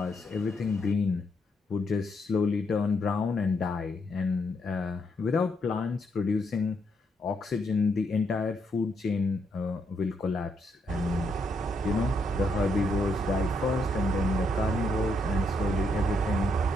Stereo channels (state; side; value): normal; both; correlation 0.77